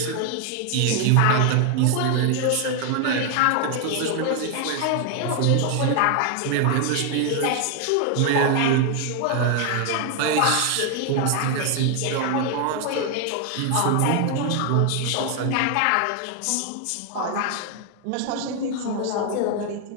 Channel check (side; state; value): both; different; correlation 0.01